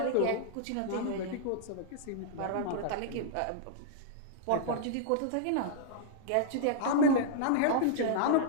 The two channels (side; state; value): both; different; correlation -0.02